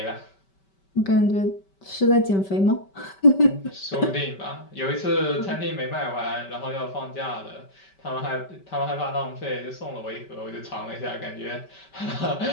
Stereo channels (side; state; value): right; late; 5.2 ms